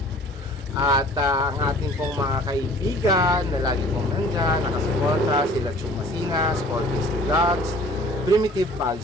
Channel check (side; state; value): both; normal; correlation 0.50